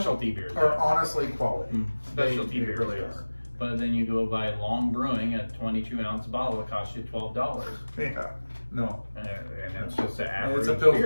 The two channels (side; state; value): both; inverted; correlation -1.00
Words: beers are honestly quality. Specialty beers really are. are. But then you go buy Long Brewing, a 22-ounce bottle. It costs you $12. Yeah. No. And it's just an average It's a Pilsner.